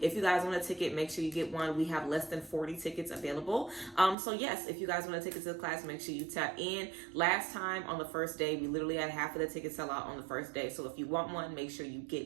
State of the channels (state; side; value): drops out; left; at 4.2 s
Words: you guys want a ticket, make sure you get one. We have less than 40 tickets available. So yes, if you guys want a ticket to the class, make sure you tap in. Last time on the first day, we literally had half of the tickets sell out on the first day. So if you want one, make sure you